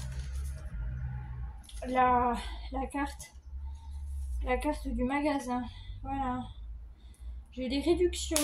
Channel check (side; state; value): both; identical; correlation 1.00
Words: carte du magasin. Voilà. J'ai eu des